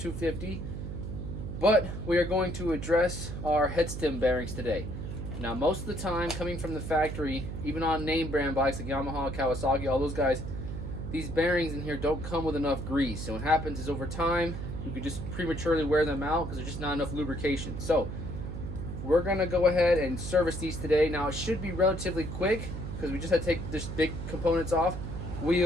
but we are going to address our head stem bearings today. Now most of the time coming from the factory, even on name brand bikes like Yamaha, Kawasaki, all those guys, these bearings in here don't come with enough grease. And what happens is over time you could just prematurely wear them out because there's just not enough lubrication. So we're going to go ahead and service these today. Now it should be relatively quick because we just had to take this big components off.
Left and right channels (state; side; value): noise; right; hum, 6 dB below the sound